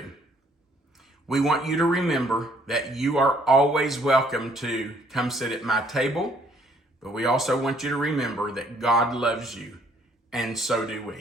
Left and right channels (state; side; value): normal; both; correlation 0.63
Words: We want you to remember that you are always welcome to come sit at my table, but we also want you to remember that God loves you, and so do